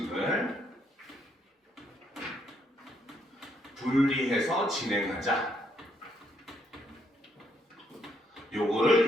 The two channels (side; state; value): both; normal; correlation 0.74